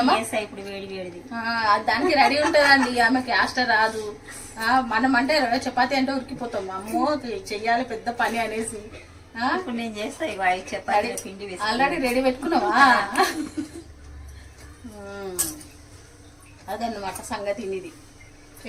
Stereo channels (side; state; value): both; identical; correlation 1.00